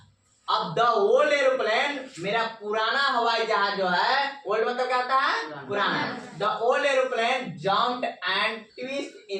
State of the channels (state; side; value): identical; both; correlation 1.00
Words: अब द ओल्ड एरोप्लेन, मेरा पुराना हवाई जहाज जो है, ओल्ड मतलब क्या होता है, पुराना, the old aeroplane jumped and twist